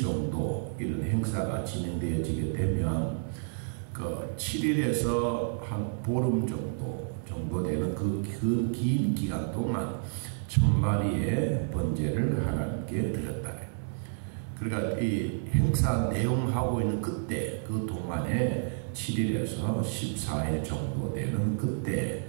정도 이런 행사가 진행되어지게 되면 그 7일에서 한 보름 정도 되는 그 긴 기간 동안 1000마리의 번제를 하나님께 드렸다. 그러니까 이 행사 내용하고 있는 그때 그 동안에 7일에서 14일 정도 되는 그때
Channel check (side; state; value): left; silent; digital silence